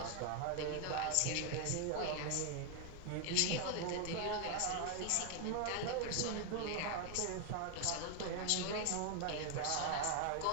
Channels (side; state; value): both; different; correlation 0.00